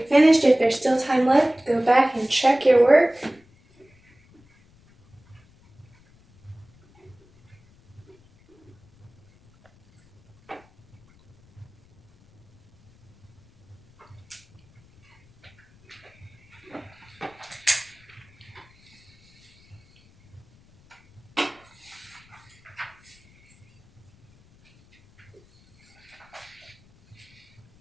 finished, if there's still time left, go back and check your work.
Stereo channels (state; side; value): noise; left; rumble, 30 dB below the sound